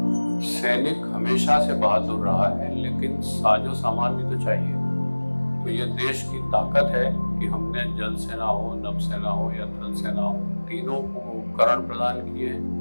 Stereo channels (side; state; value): both; inverted; correlation -1.00